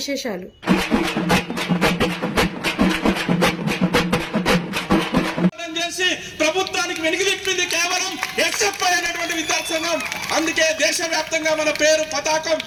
ప్రభుత్వానికి వెనుకలిప్పింది కేవలం ఎస్ఎఫ్ఐ అనేటువంటి విద్యార్థి సంఘం. అందుకే దేశవ్యాప్తంగా మన పేరు, పతాకం,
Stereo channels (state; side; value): identical; both; correlation 1.00